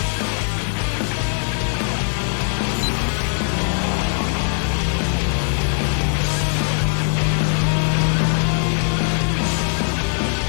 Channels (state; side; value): silent; right; 55 dB below the other